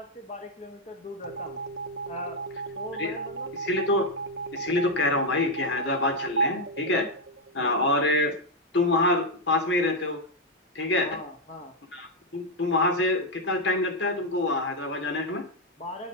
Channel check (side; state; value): both; normal; correlation 0.02